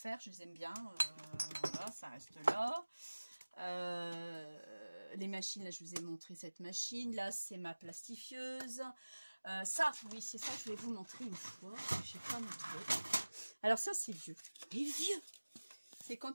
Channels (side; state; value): both; inverted; correlation -1.00